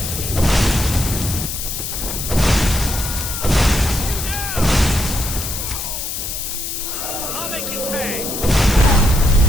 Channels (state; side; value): noise; left; hiss, 5 dB below the sound